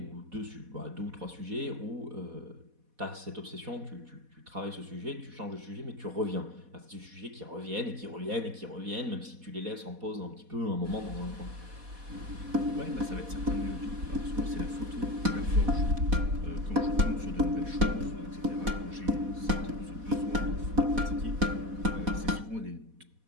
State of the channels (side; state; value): left; late; 4.1 ms